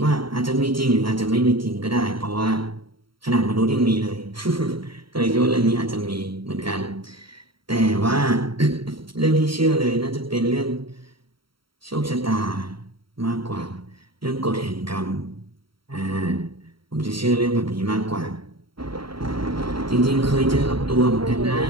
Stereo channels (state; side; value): late; left; 0.74 ms